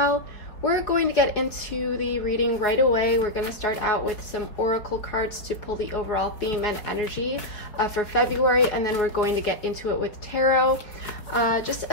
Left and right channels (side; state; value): right; late; 4.4 ms